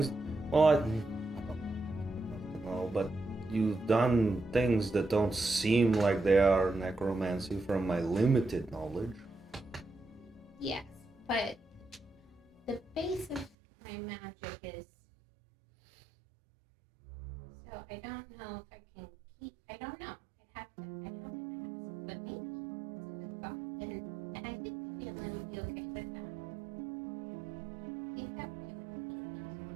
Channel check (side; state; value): left; drops out; at 13.5 s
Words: Well, I don't know, but you've done things that don't seem like they are necromancy from my limited knowledge. Yes, but the base of my magic is. So I don't know if I can keep. I don't know. I'd have to ask, but maybe it's a good thought, and I think the family would be okay with that. I think that would